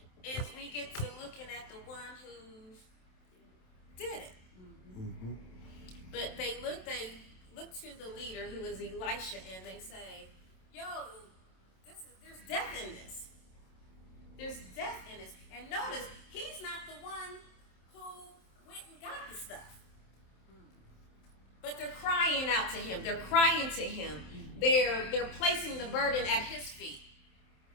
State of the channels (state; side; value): late; right; 27 ms